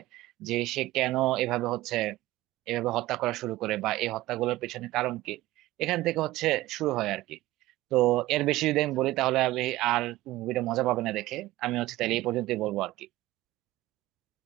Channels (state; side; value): quieter; left; 17.3 dB